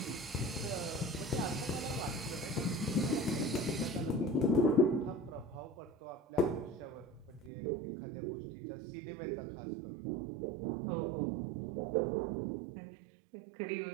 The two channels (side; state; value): left; drops out; at 7.5 s